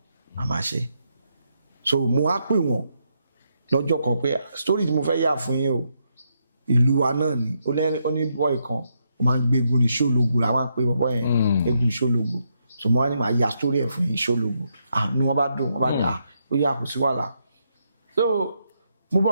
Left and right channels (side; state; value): both; inverted; correlation -0.79